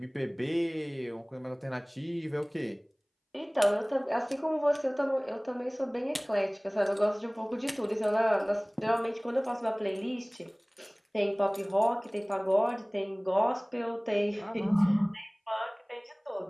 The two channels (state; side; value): identical; both; correlation 1.00